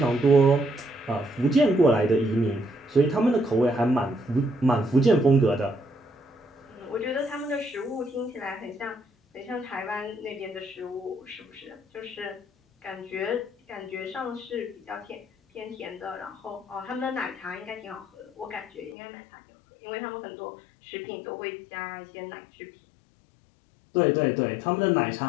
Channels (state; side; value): drops out; right; at 18.9 s